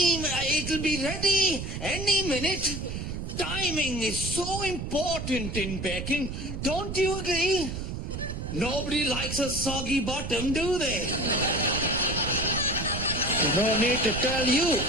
be ready any minute. Timing is so important in baking. Don't you agree? Nobody likes a soggy bottom, do they? No need to tell you.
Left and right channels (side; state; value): right; noise; rumble, 6 dB below the sound